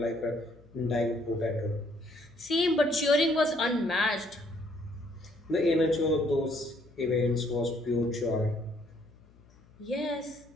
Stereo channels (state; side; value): noise; left; hum, 27 dB below the sound